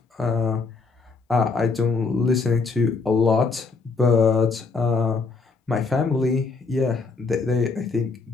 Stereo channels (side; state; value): right; quieter; 4.2 dB